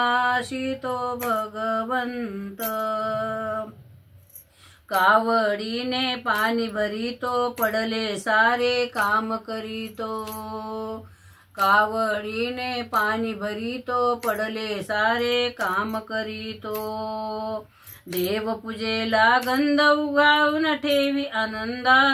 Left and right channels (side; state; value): both; identical; correlation 1.00